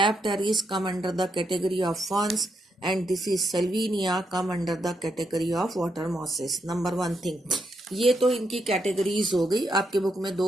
come under the category of ferns, and this is Salvinia, come under the category of water mosses. Number one thing. ये तो इनकी categories हो गई. आपके book में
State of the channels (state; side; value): normal; both; correlation 0.80